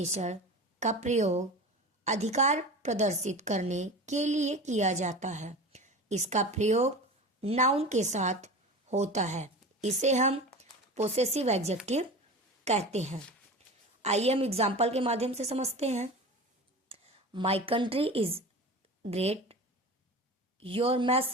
का प्रयोग अधिकार प्रदर्शित करने के लिए किया जाता है। इसका प्रयोग नाउन के साथ होता है। इसे हम पोसेसिव एडजेक्टिव कहते हैं। आइए हम एग्जाम्पल के माध्यम से समझते हैं। My country is great, your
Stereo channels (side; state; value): both; normal; correlation 0.32